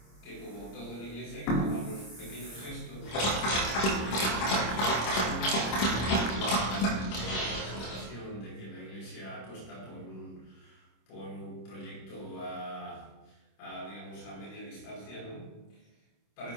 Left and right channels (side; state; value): right; late; 26 ms